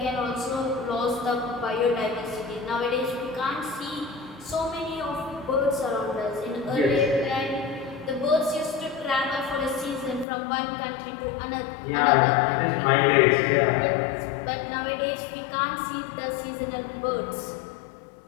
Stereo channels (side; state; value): right; drops out; at 10.2 s